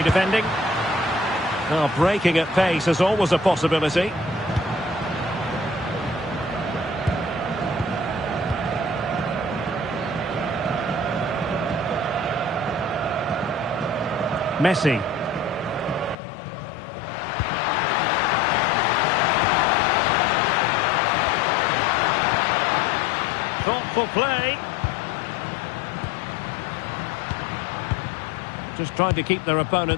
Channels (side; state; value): right; drops out; at 16.2 s